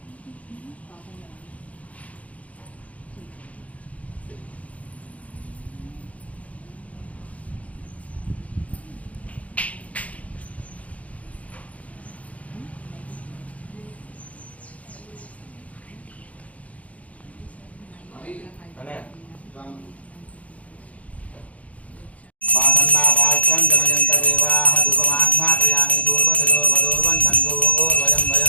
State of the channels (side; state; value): right; late; 0.067 ms